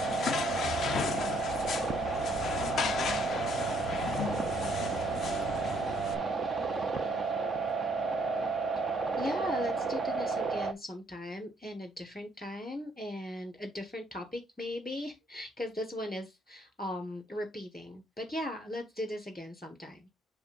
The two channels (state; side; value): normal; both; correlation 0.68